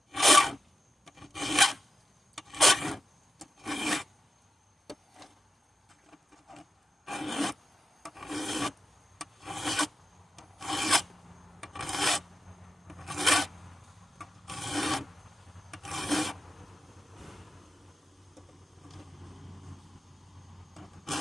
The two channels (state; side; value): normal; both; correlation 0.90